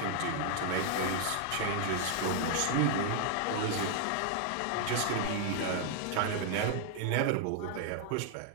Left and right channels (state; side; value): different; both; correlation 0.00